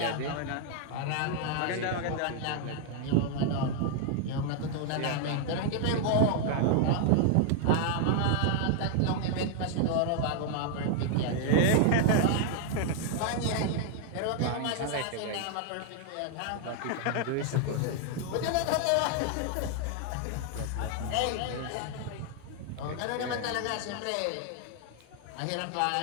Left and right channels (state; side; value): different; both; correlation 0.00